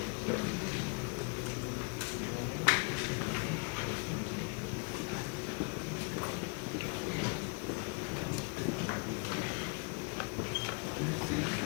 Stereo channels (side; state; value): right; quieter; 33.8 dB